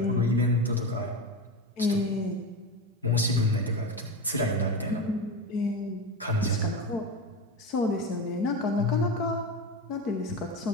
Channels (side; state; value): both; normal; correlation 0.22